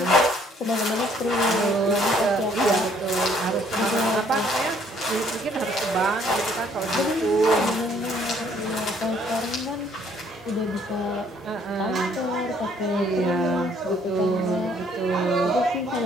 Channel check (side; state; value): both; normal; correlation 0.63